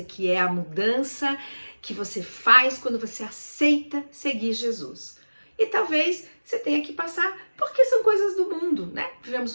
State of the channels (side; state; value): both; inverted; correlation -1.00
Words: que é a mudança que você faz quando você aceita seguir Jesus. E talvez você tenha que passar, porque são coisas do mundo, né? Vivemos